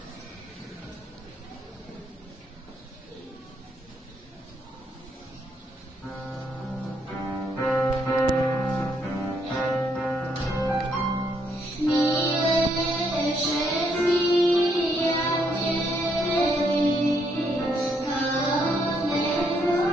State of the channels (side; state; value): both; normal; correlation 0.73